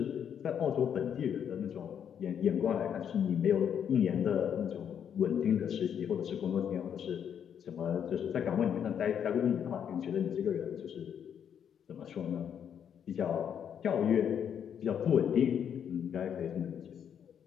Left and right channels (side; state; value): right; quieter; 8.4 dB